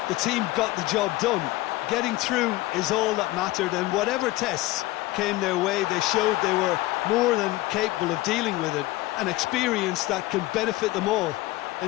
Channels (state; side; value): quieter; right; 18.4 dB